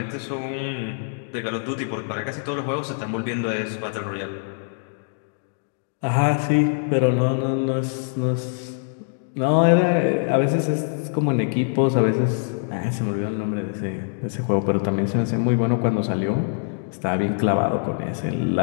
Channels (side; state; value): right; silent; digital silence